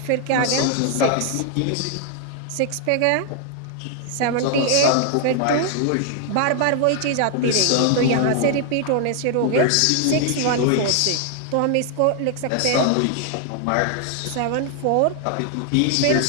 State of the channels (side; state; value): both; different; correlation 0.00